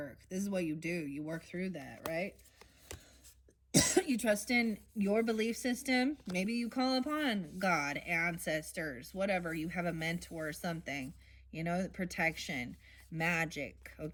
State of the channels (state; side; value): identical; both; correlation 1.00